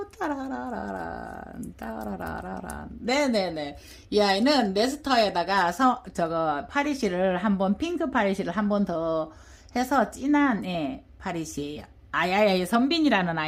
따라라라란. 네네네. 이 아이는 네스터에다가 파리시를 한번, 핑크 파리시를 한 번 더 해서 진한, 파리시예요. 선빈이라는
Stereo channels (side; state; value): both; identical; correlation 1.00